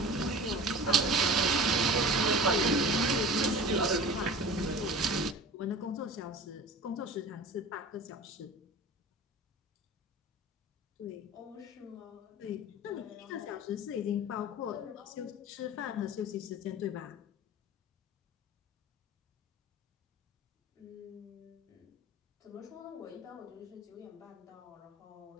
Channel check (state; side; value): normal; both; correlation 0.38